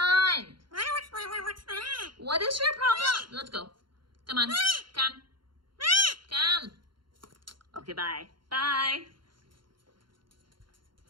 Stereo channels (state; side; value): late; left; 0.73 ms